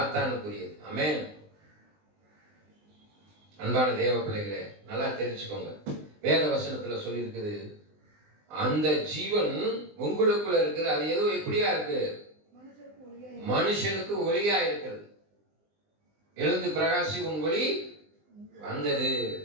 ஆமென். அன்பான தேவ பிள்ளைகளே, நல்லா தெரிஞ்சுக்கோங்க. வேத வசனத்துல சொல்லி இருக்குது, அந்த ஜீவன் உங்களுக்குள்ள இருக்குது. அது எதுவும் எப்படியா இருக்கு? மனுஷனுக்கு ஒளியா இருக்கிறது. எழுந்து பிரகாசி உன் ஒளி வந்தது.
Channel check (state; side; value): late; left; 20 ms